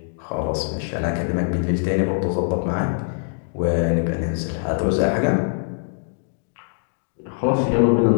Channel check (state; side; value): silent; right; digital silence